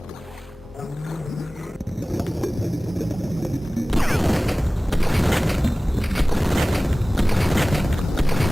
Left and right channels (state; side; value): normal; both; correlation 0.98